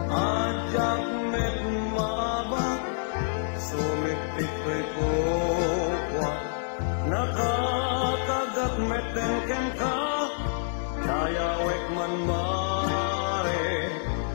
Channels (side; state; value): right; silent; digital silence